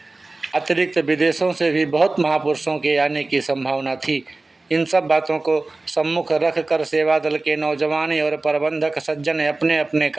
अतिरिक्त विदेशों से भी बहुत महापुरुषों के आने की संभावना थी। इन सब बातों को सम्मुख रख कर सेवा दल के नौजवान और प्रबंधक सज्जन अपने अपने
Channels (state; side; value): quieter; left; 3.2 dB